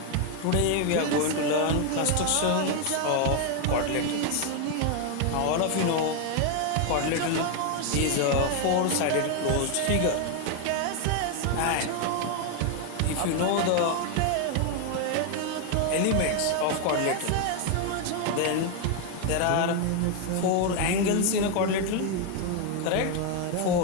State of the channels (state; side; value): different; both; correlation 0.01